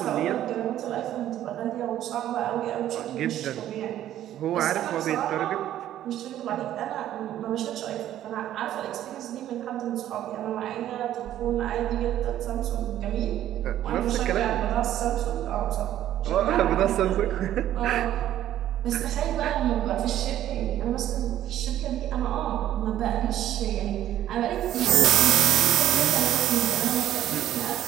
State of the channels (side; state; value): left; quieter; 12.2 dB